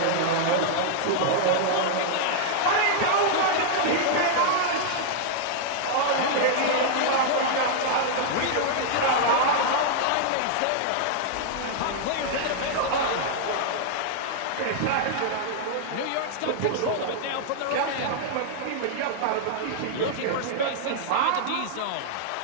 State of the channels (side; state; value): both; different; correlation -0.01